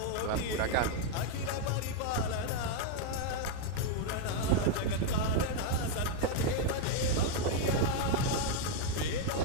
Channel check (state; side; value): different; both; correlation 0.00